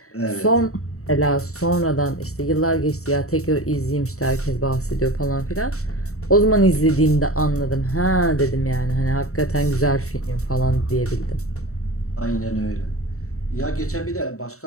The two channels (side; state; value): right; late; 0.64 ms